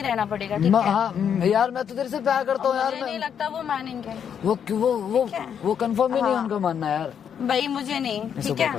रहना पड़ेगा, ठीक है? हाँ यार, मैं तो तेरे से प्यार करता हूँ यार। मुझे नहीं लगता वो मानेंगे। वो कंफर्म ही नहीं उनका मानना यार। भाई मुझे नहीं, इसे ठीक ऊपर है?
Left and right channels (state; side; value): quieter; right; 8.1 dB